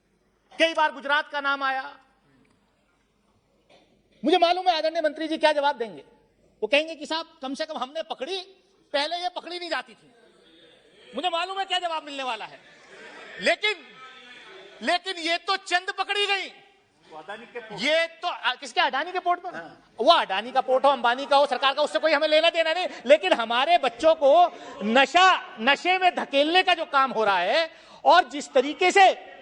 कई बार गुजरात का नाम आया। मुझे मालूम है आदरणीय मंत्री जी क्या जवाब देंगे। वो कहेंगे कि साहब कम से कम हमने पकड़ी, पहले ये पकड़ी नहीं जाती थी। मुझे मालूम है क्या जवाब मिलने वाला है, लेकिन ये तो चंद पकड़ी गई। ये तो किसके, अडानी के पोर्ट पर? वो अडानी का पोर्ट हो, अंबानी का हो, सरकार का, उससे कोई हमें लेना देना नहीं। लेकिन हमारे बच्चों को नशे में धकेलने का जो काम हो रहा है, और जिस तरीके से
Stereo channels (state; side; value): identical; both; correlation 1.00